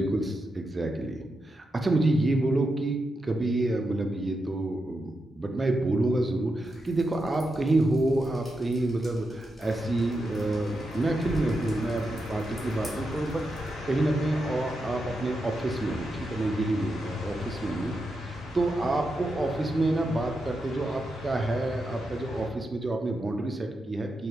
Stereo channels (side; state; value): both; normal; correlation 0.86